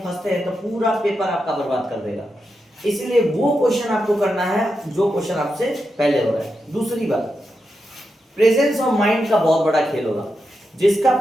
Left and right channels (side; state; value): both; normal; correlation 0.87